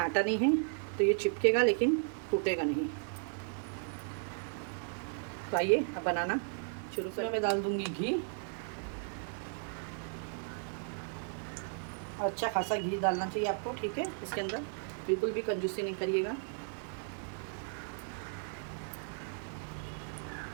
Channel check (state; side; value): silent; left; 54 dB below the other